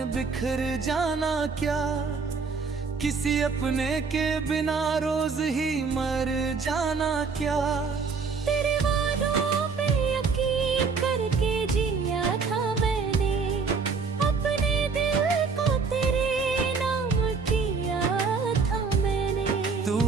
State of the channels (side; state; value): left; quieter; 5.0 dB